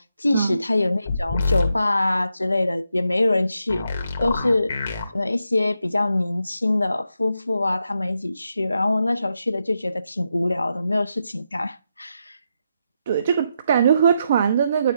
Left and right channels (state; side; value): inverted; both; correlation -0.84